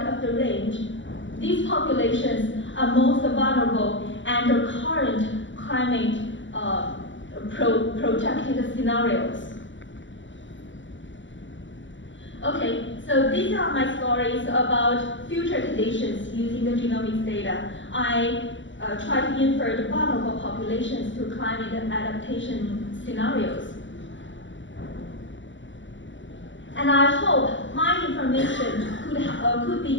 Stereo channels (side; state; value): right; late; 0.55 ms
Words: the range, these populations are most vulnerable under current climate projected scenarios. Okay, so these are my stories about future conditions using the genomics data. I try to infer the vulnerable populations to climate adaptation scenarios. And I hope my information could be